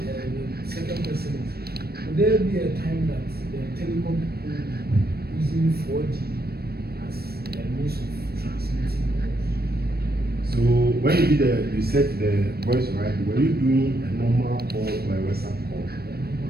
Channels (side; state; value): left; late; 0.46 ms